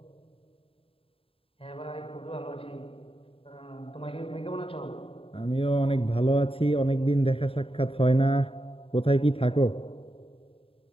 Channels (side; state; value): right; late; 0.27 ms